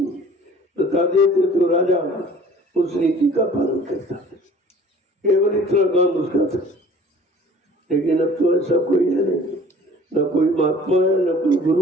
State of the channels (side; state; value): both; normal; correlation 0.49